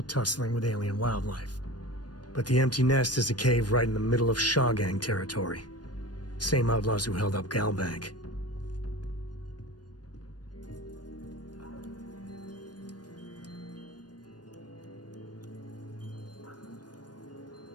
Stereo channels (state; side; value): late; right; 0.69 ms